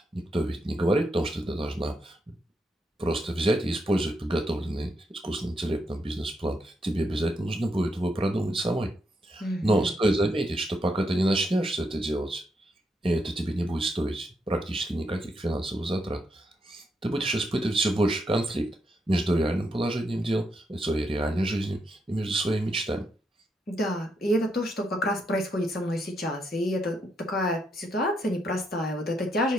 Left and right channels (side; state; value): both; normal; correlation 0.80